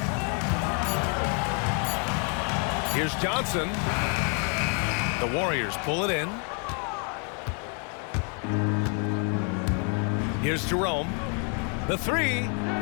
Here's Johnson. The Warriors pull it in. Here's Jerome. The three.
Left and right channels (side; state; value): right; quieter; 39.4 dB